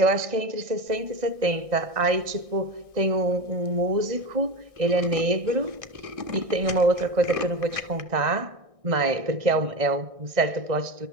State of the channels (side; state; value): left; late; 1.6 ms